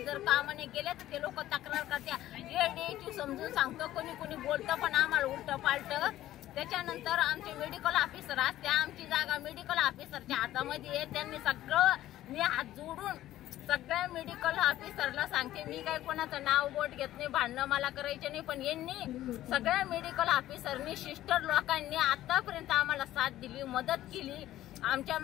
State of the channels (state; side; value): quieter; right; 14.0 dB